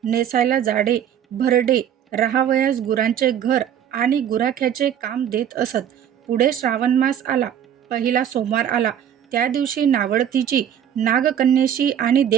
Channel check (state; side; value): quieter; left; 9.5 dB